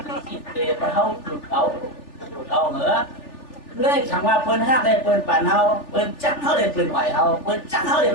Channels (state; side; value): late; right; 3.4 ms